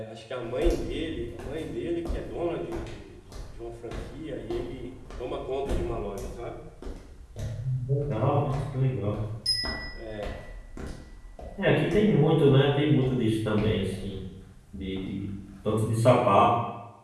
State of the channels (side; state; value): both; identical; correlation 1.00